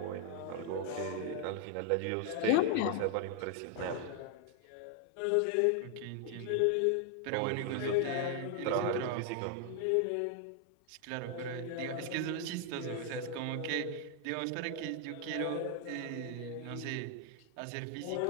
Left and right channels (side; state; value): both; different; correlation 0.00